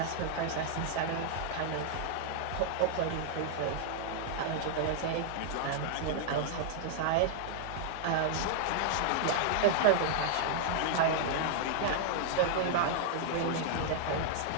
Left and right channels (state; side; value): different; both; correlation -0.01